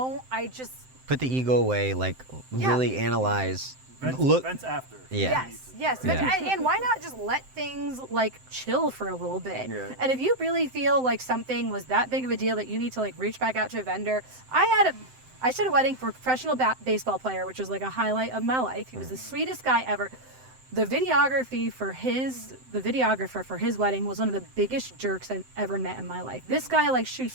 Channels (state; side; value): late; left; 7.8 ms